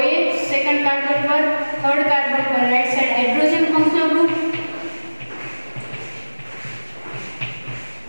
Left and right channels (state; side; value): inverted; both; correlation -1.00